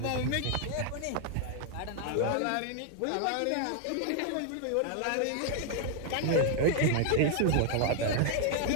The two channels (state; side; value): different; both; correlation 0.00